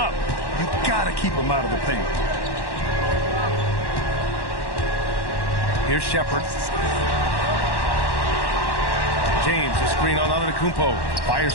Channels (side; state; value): right; late; 1.1 ms